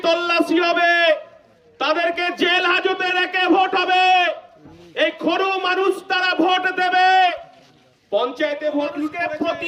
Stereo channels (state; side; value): identical; both; correlation 1.00